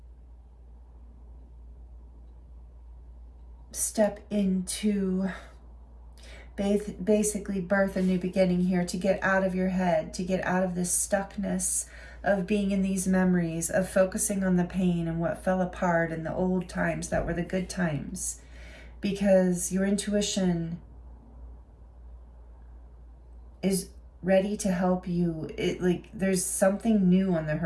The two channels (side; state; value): both; identical; correlation 1.00